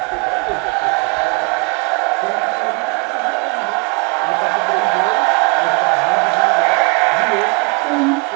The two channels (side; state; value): left; quieter; 32.9 dB